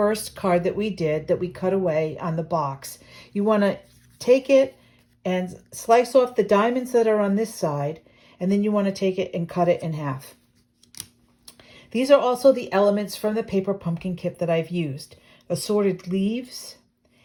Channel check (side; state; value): both; identical; correlation 1.00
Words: card that we cut away on the box. You want to take it and slice off the diamonds that are on this side, and then you want to take it and cut it in half. These are also the elements from the paper pumpkin kit that I've used. Assorted leaves,